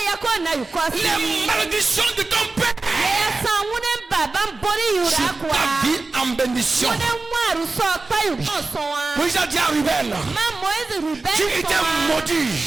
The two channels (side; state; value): left; quieter; 3.5 dB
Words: les malédictions de ton père sur ta vie en bénédiction. Moïse a dit à Ruben, tu étais maudit.